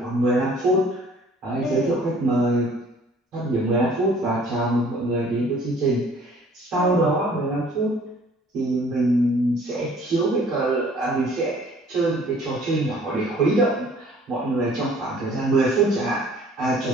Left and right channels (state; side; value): normal; both; correlation 0.54